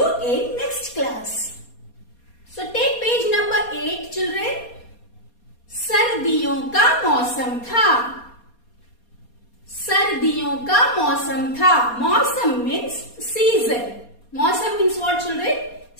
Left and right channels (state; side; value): late; right; 4.2 ms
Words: in next class. So take page number 8 children. सर्दियों का मौसम था. सर्दियों का मौसम था. मौसम means season. Mausam means what children?